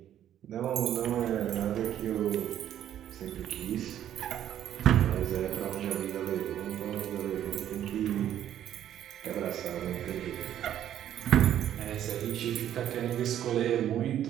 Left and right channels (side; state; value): left; quieter; 11.0 dB